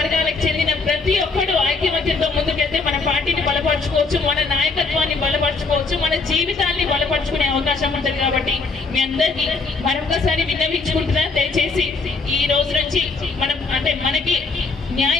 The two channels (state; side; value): quieter; right; 4.1 dB